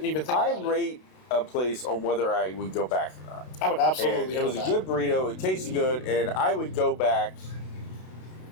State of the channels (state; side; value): late; right; 32 ms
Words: even think. I rate a place on whether I would go back or not. I would absolutely. And it was a good burrito. It tasted good, and I would go back